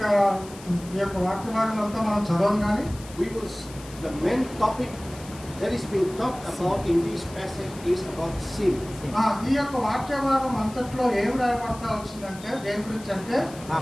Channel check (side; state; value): left; noise; hiss, 18 dB below the sound